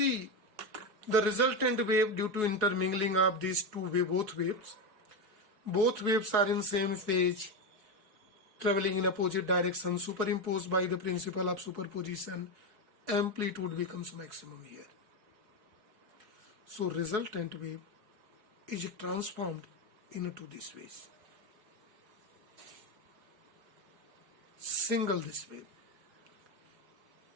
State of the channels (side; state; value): left; late; 4.7 ms